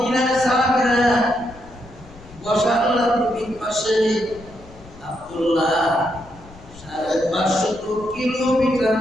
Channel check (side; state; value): left; noise; rumble, 21 dB below the sound